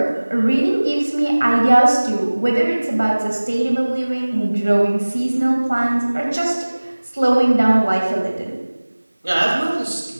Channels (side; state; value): both; inverted; correlation -1.00